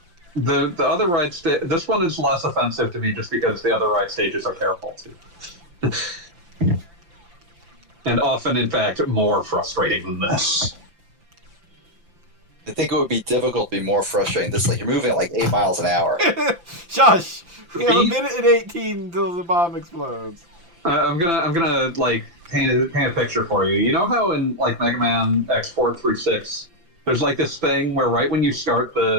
the other ride this one is less offensive to me just because the other ride stages are terrible too, and often, in fact, more frustrating than this. I think it would be difficult to be more frustrating. This, like, you're moving at like 8 miles an hour. Shush! We have a Me? minute and 18 until the bomb explodes. I'm gonna like paint a picture for you. You know how in like Mega Man X4 through 6, there's like this thing where right when you start the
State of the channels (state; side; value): late; left; 5.8 ms